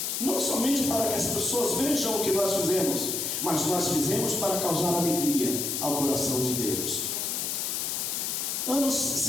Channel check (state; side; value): noise; left; hiss, 1 dB below the sound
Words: Não somente para que as pessoas vejam o que nós fizemos, mas nós fizemos para causar alegria ao coração de Deus. Anos